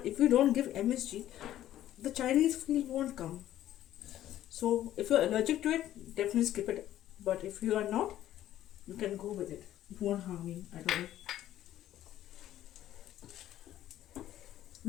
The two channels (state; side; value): quieter; right; 12.8 dB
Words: if you don't give MSG, the Chinese feel won't come. So if you're allergic to it, definitely skip it. But if you are not, you can go with it. It won't harm you at all.